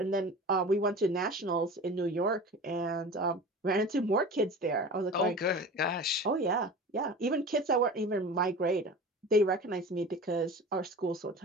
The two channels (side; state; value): both; normal; correlation 0.35